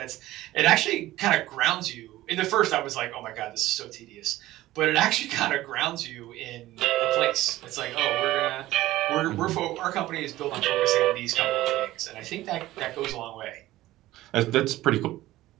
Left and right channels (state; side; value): quieter; left; 16.2 dB